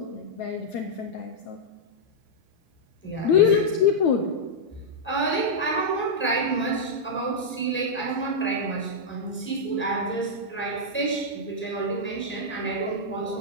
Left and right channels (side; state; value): both; normal; correlation -0.08